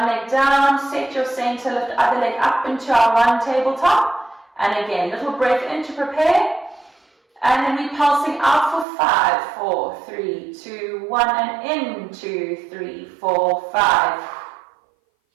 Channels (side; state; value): left; drops out; at 8.8 s